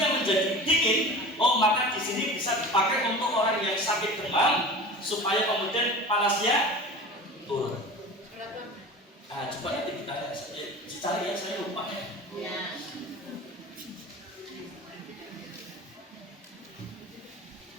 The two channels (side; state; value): both; normal; correlation 0.36